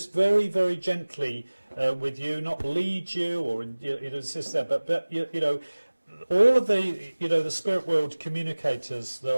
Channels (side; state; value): both; inverted; correlation -1.00